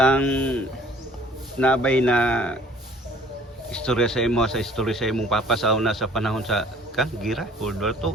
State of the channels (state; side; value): normal; both; correlation 0.54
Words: nabay na istorya sa imong papa sa una sa panahon sa gira World War II